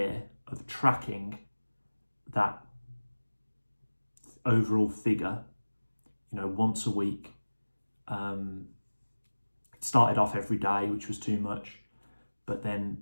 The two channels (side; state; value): both; inverted; correlation -1.00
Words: of tracking that overall figure, once a week, it started off every day, which was too much, but